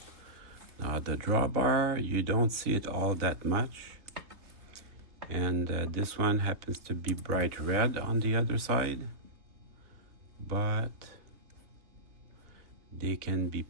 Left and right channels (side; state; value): left; late; 3.3 ms